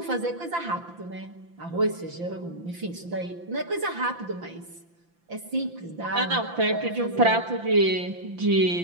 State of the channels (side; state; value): left; late; 5.9 ms